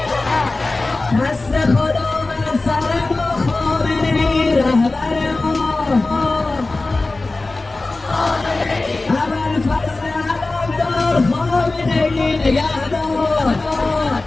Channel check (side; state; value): right; quieter; 3.2 dB